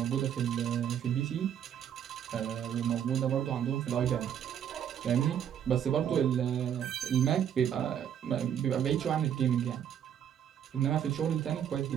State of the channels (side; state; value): left; quieter; 9.3 dB